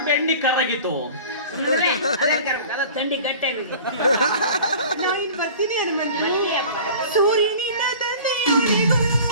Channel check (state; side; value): inverted; both; correlation -0.41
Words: ಬೆಣ್ಣಿ ಕರಗಿತು. ಅದ ತಂಡಿ ಗಟ್ಟೆ ನಾನು ಇನ್ನು ಬರ್ತೀನಿ ಹನುಮಂತ. ಸೂರ್ಯನಿಂದ ತಂದೆಯವರೆಗೂ